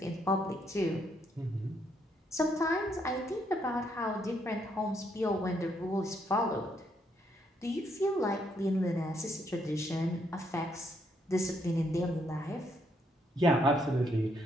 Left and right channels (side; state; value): both; normal; correlation 0.74